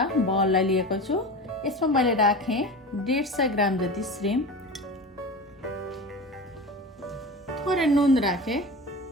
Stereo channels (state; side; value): normal; both; correlation 0.30